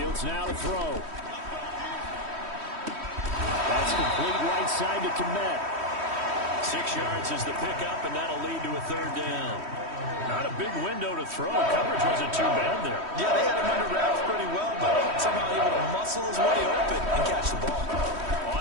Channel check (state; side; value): late; left; 3.1 ms